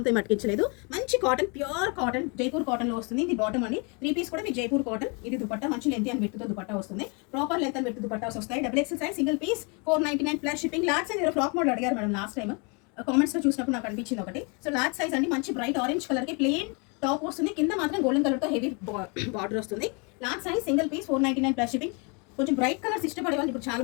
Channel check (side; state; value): right; quieter; 32.6 dB